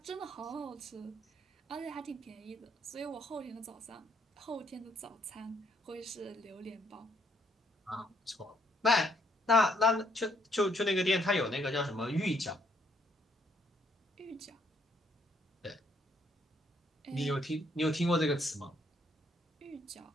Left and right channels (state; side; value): normal; both; correlation 0.70